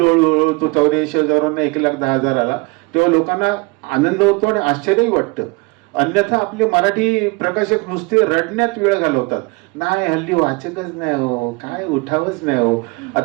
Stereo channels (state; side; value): quieter; left; 27.8 dB